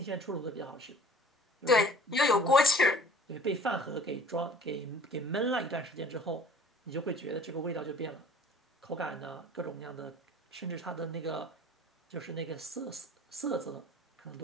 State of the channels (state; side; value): normal; both; correlation 0.48